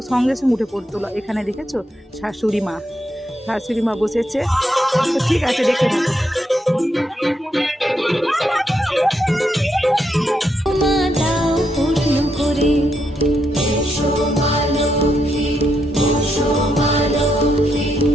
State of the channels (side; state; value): both; normal; correlation 0.80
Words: সঙ্গে সঙ্গে উঠে পড়তে হলো। এখানে দেখেছো শাশুড়ি মা বসেছে, তো ঠিক আছে দেখে থাকো। মা দাও পূর্ণ করে। এসো মা লক্ষ্মী, বসো মা লক্ষ্মী,